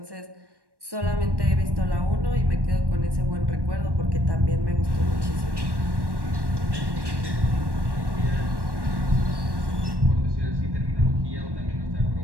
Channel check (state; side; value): late; left; 1.1 ms